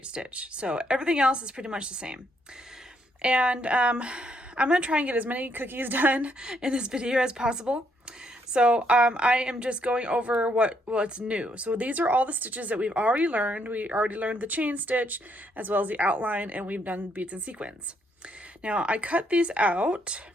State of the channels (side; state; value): both; normal; correlation 0.73